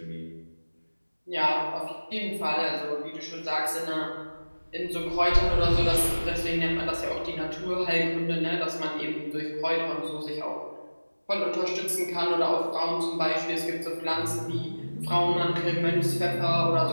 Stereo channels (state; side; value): inverted; both; correlation -1.00